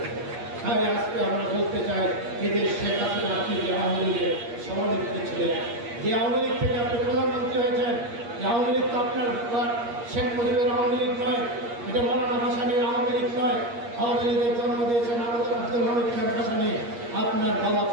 তাই আজকে আমরা বলতে চাই, এদের শেখ হাসিনা আপনি যে আওয়ামী লীগের সভানেত্রী ছিলেন, যে আওয়ামী লীগ থেকে আপনি প্রধানমন্ত্রী হয়েছেন, যে আওয়ামী লীগ তো আপনার শেখ মুজিবের আওয়ামী লীগ নয়, এটা মৌলানা ভাসানীর আওয়ামী লীগ নয়। আওয়ামী লীগের জন্ম দিয়েছেন আব্দুল হামিদ খান ভাসানী, আপনার বাবা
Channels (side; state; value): left; late; 8.5 ms